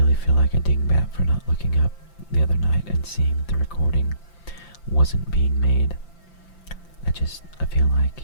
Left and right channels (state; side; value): late; right; 5.9 ms